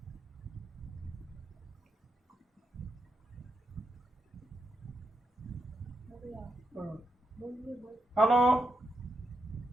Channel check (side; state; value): both; normal; correlation 0.84